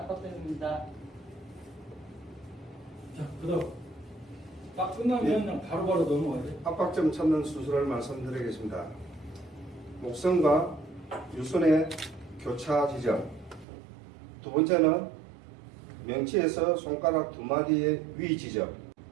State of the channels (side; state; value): left; drops out; at 13.7 s